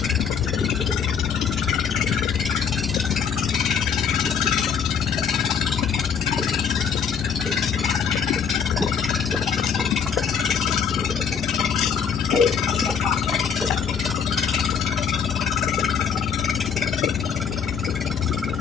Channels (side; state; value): right; quieter; 6.8 dB